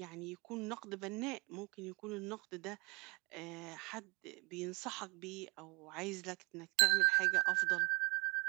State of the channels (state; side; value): quieter; left; 27.7 dB